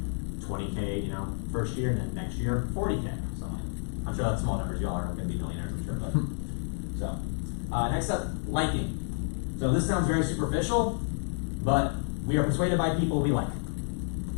20K, you know, first year, and then next year, 40K, something. I'm sure that's small numbers, y'all aren't gonna be millionaires, I'm sure, but. So, next up, liking. So this sounds very superficial, but we are persuaded by people we like.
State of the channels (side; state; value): right; silent; 58 dB below the other